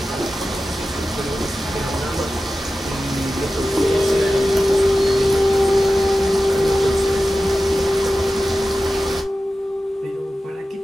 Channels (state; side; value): normal; both; correlation 0.94